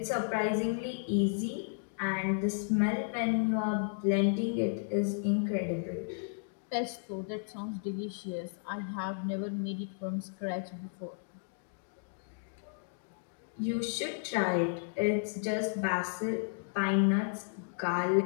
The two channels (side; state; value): right; silent; digital silence